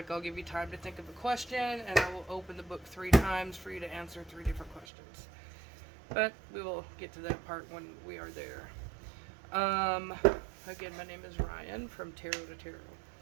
I'll give you time to think of a question and I will open the book 3 times for you to answer 3 different questions. But we will get to that part when we are there. Again, my name is Rian from Tarot to Tarot.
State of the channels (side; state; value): left; drops out; at 4.9 s